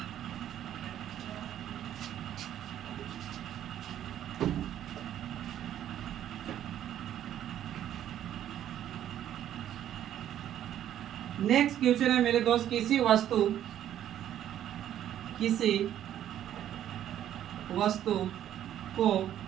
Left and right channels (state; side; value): quieter; left; 11.2 dB